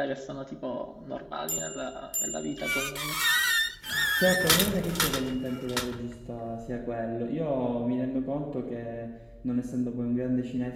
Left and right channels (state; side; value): identical; both; correlation 1.00